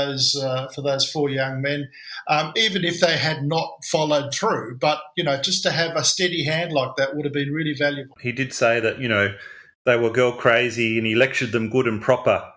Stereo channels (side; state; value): both; identical; correlation 1.00